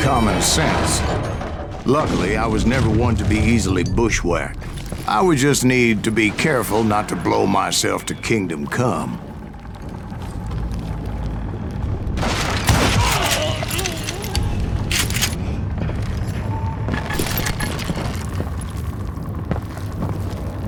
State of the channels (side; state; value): both; identical; correlation 1.00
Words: common sense. Luckily, I was never one to be easily bushwhacked. I would just need to be careful not to blow myself to kingdom come.